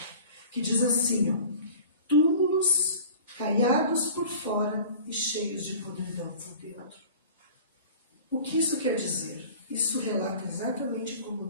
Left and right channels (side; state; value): both; inverted; correlation -0.44